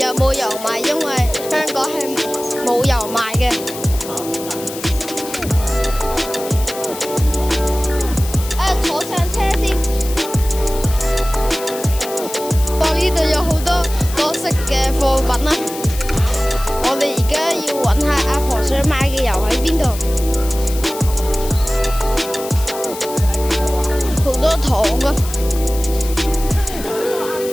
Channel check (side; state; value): left; noise; hiss, 12 dB below the sound